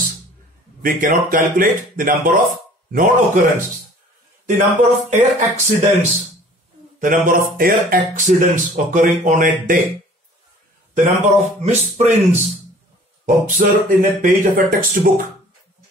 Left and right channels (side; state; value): both; normal; correlation 0.50